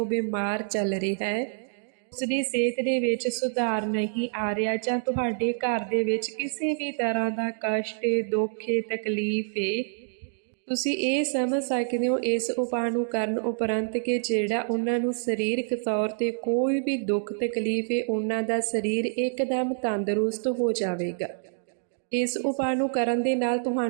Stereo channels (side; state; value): left; silent; digital silence